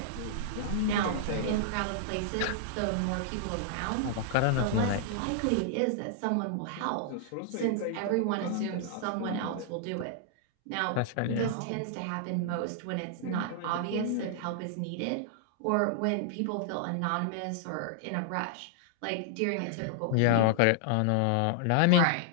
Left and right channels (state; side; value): different; both; correlation -0.01